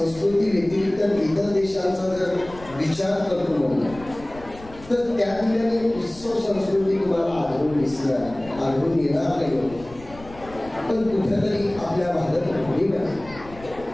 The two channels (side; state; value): left; noise; rumble, 19 dB below the sound